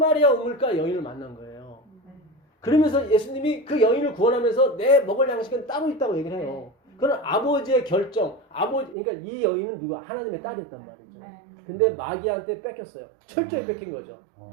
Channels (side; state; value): left; drops out; at 9.0 s